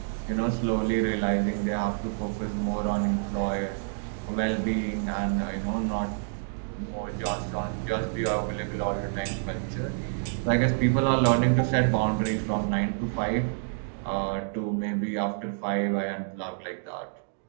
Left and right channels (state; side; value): silent; left; digital silence